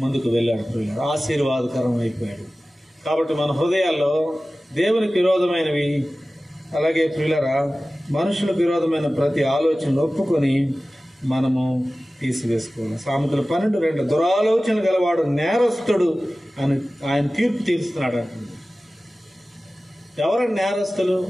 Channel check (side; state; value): both; normal; correlation 0.96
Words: ముందుకు వెళ్ళాడు. ఆశీర్వాదకరం అయిపోయాడు. కాబట్టి మన హృదయాల్లో దేవునికి విరోధమైనవి, అలాగే ప్రియులరా మనుషులకు విరోధమైన ప్రతి ఆలోచనలు ఒప్పుకొని మనము తీసివేసుకోవాలి. సామెతలు 12:2 దురాలోచనలు గలవాడు నేరస్తుడు అని ఆయన తీర్పు తీరుస్తున్నాడు అంటుంది. ఎవరైనా నేరస్తులు?